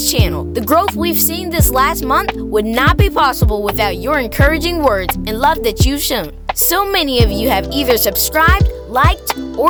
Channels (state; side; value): identical; both; correlation 1.00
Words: channel. The growth we've seen this last month would not be possible without your encouraging words and love that you've shown. So many of you have either subscribed, liked,